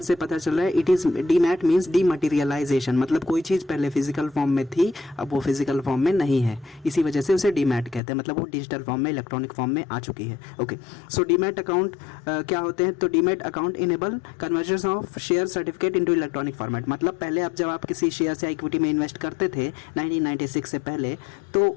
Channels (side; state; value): right; drops out; at 8.0 s